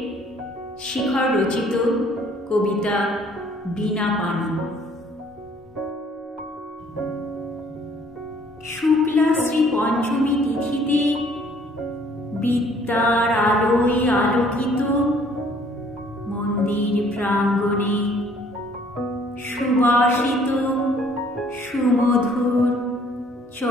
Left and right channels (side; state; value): both; normal; correlation 0.60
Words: শিখর রচিত কবিতা বীণা পানি। শুক্লা শ্রী পঞ্চমী তিথিতে বিদ্যার আলোয় আলোকিত মন্দির প্রাঙ্গণে সুবাসিত সুমধুর